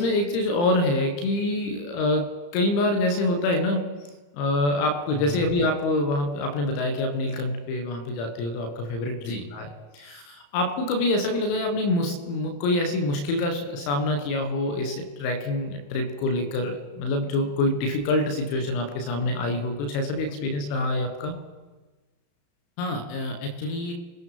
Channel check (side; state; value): right; late; 35 ms